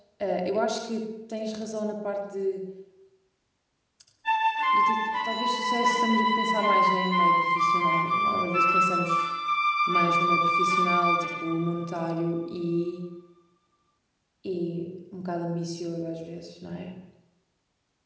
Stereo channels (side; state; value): both; identical; correlation 1.00